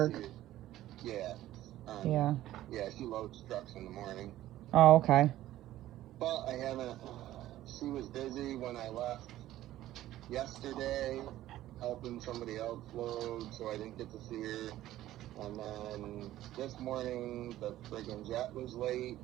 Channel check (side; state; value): left; quieter; 14.3 dB